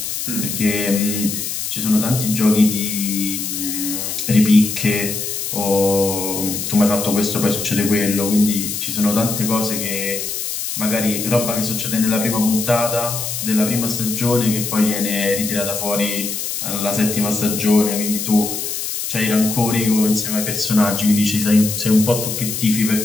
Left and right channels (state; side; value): noise; left; hiss, 4 dB below the sound